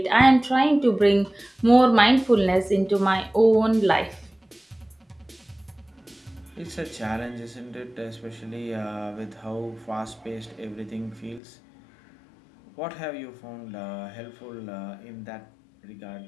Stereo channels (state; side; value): drops out; right; at 11.4 s